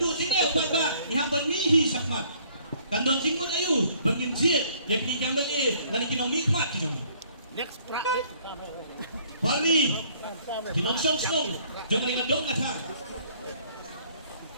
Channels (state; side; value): inverted; both; correlation -0.60